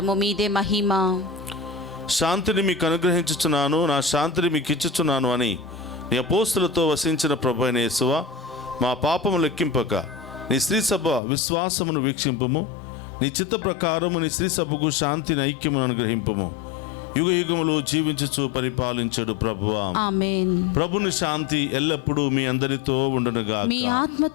మీదే మహిమ. శాంతిని మీకు అనుగ్రహించుచున్నాను, నా శాంతిని మీకు ఇచ్చుచున్నాను అని నీ అపోస్తులతో వసించిన ప్రభు అయిన యేసువా, మా పాపము లెక్కింపక నీ శ్రీ సభ విశ్వాసమును వీక్షింపుము. నీ చిత్త ప్రకారము నీ శ్రీ సభకు శాంతిని, ఐక్యమును అనుగ్రహింపుము. యుగ యుగములు జీవించుచు పరిపాలించడు ప్రభువా. ఆమేన్. ప్రభుని శాంతి ఎల్లప్పుడూ మీ అందరితో ఉండునుగాక, మీ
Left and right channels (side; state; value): right; drops out; at 11.2 s